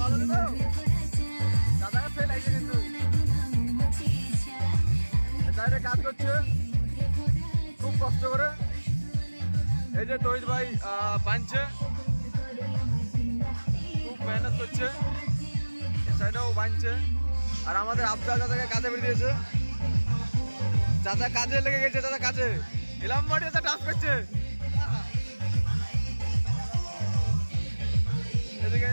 কাজ করছে খুব কষ্ট করে। এই যে তহিদ ভাই বানছে, খুব মেহনত করছে, সাইডেও বানছে। আর আমাদের আফজাল দাদাকে কাজে বেরিয়ে দিয়েছে, চাচা কাজে লেগে গেছে, চাচা কাজে এলাম বাড়ি চাচা ডান্স করছে। এদিকে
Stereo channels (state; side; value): inverted; both; correlation -1.00